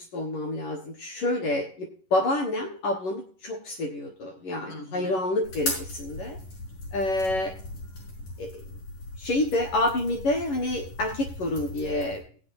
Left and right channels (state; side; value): late; right; 11 ms